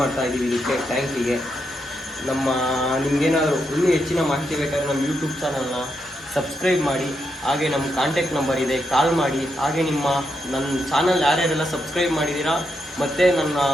ಮಾಡ್ತಾ ಇದ್ದೀವಿ ಇದಕ್ಕೆ ಟ್ಯಾಂಕಿಗೆ. ನಿಮಗೇನಾದರೂ ಇನ್ನೂ ಹೆಚ್ಚಿನ ಮಾಹಿತಿ ಬೇಕಾದರೆ ನಮ್ಮ ಯೂಟ್ಯೂಬ್ ಚಾನಲ್ನ ಸಬ್ಸ್ಕ್ರೈಬ್ ಮಾಡಿ, ಹಾಗೆ ನಮ್ಮ ಕಾಂಟ್ಯಾಕ್ಟ್ ನಂಬರ್ ಇದೆ, ಕಾಲ್ ಮಾಡಿ. ಹಾಗೆ ನನ್ನ ಚಾನಲ್ ಯಾರ್ಯಾರೆಲ್ಲ ಸಬ್ಸ್ಕ್ರೈಬ್ ಮಾಡಿದ್ದೀರಾ ಮತ್ತು ನನ್ನ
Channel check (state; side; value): normal; both; correlation 0.82